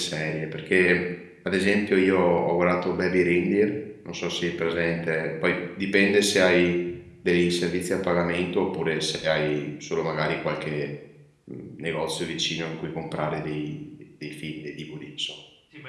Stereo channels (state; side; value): identical; both; correlation 1.00